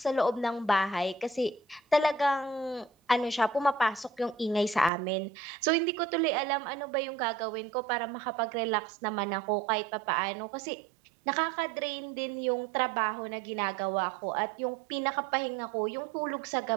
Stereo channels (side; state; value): left; drops out; at 4.9 s